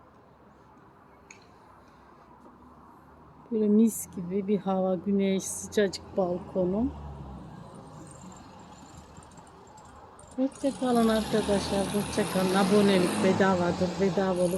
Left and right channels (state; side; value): identical; both; correlation 1.00